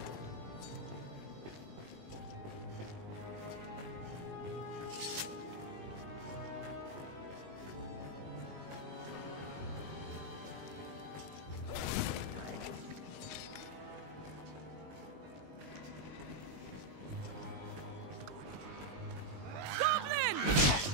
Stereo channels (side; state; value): left; late; 20 ms